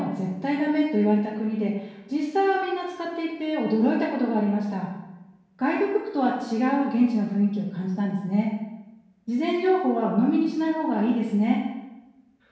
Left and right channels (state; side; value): identical; both; correlation 1.00